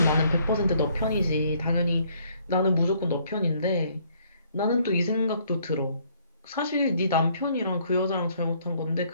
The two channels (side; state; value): both; inverted; correlation -0.65